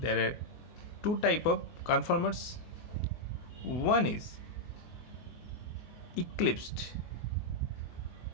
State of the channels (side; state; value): right; late; 24 ms